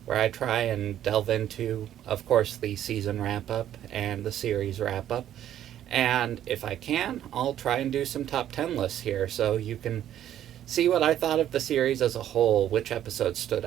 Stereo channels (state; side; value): quieter; left; 11.2 dB